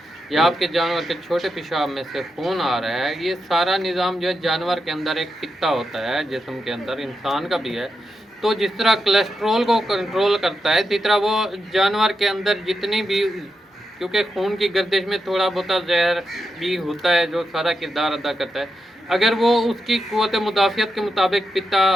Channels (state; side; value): normal; both; correlation 0.86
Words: या आपके जानवर के छोटे पेशाब में से खून आ रहा है, ये सारा निज़ाम जो है जानवर के अंदर एक पित्ता होता है जिस्म के अंदर, इंसान का भी है। तो जिस तरह कोलेस्ट्रोल को कंट्रोल करता है, इसी तरह वो जानवर के अंदर जितनी भी, क्योंकि खून की गर्दिश में थोड़ा बहुत जहर भी होता है जो सारा किरदार अदा करता है, अगर वो उसकी क़ुव्वत मुदाफ़ियत के मुताबिक पित्ता